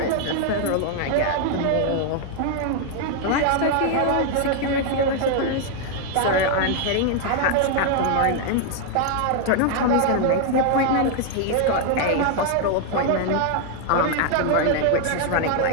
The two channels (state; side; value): different; both; correlation 0.00